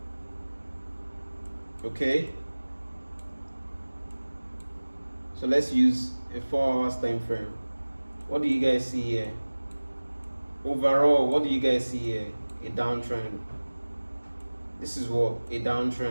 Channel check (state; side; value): inverted; both; correlation -1.00